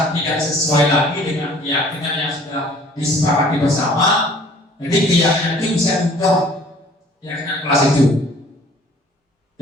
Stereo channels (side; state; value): both; normal; correlation 0.53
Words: tidak sesuai lagi dengan keyakinan yang sudah disepakati bersama, jadi keyakinan itu bisa diubah, keyakinan kelas itu.